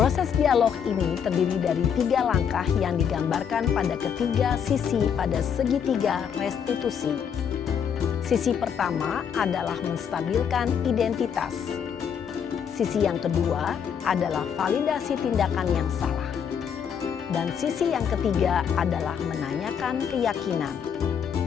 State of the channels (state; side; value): quieter; right; 7.6 dB